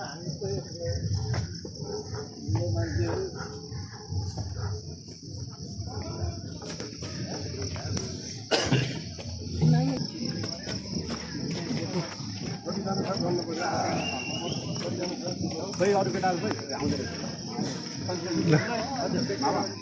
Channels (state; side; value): identical; both; correlation 1.00